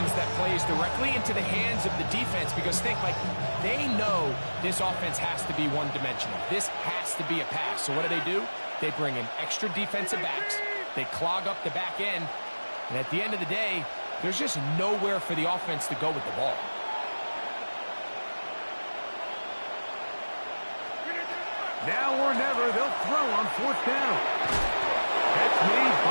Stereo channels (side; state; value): both; inverted; correlation -1.00